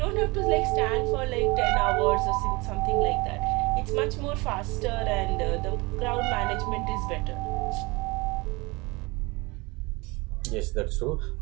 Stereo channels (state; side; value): quieter; left; 24.9 dB